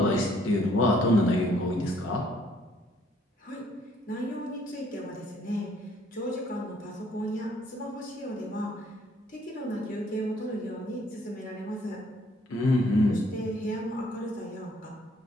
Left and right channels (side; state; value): both; normal; correlation 0.64